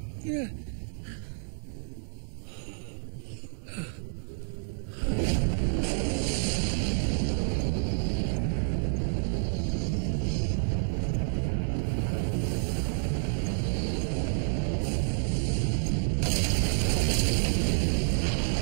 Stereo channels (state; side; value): silent; left; digital silence